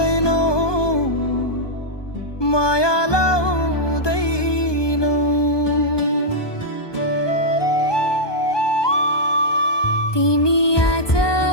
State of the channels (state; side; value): late; right; 1.2 ms